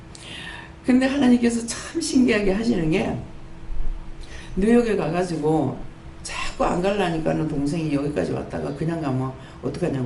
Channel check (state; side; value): identical; both; correlation 1.00